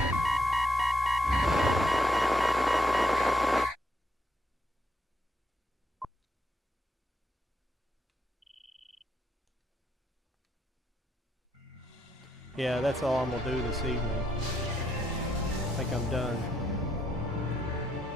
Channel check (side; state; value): both; normal; correlation 0.76